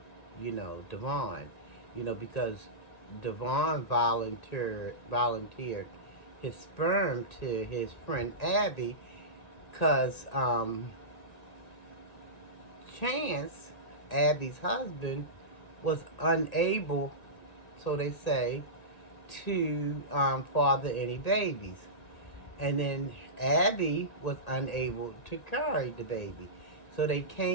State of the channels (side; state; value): right; late; 1.8 ms